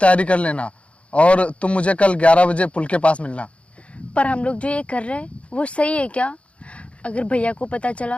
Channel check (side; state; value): right; late; 0.062 ms